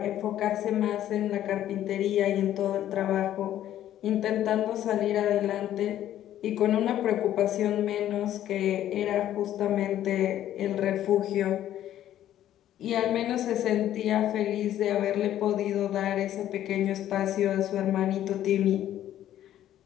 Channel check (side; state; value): right; quieter; 12.0 dB